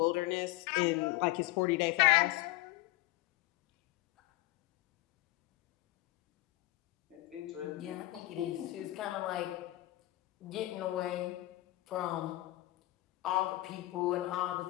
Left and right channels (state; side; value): quieter; right; 18.3 dB